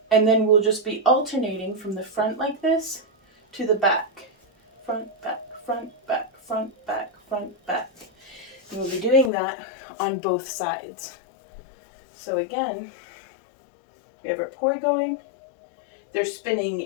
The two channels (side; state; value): right; drops out; at 9.3 s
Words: And then we'll just be alternating from the front like this to the back. Front, back, front, back, front, back, front, back. And we'll be doing that on both sides. So again, we have our poi going. They're spinning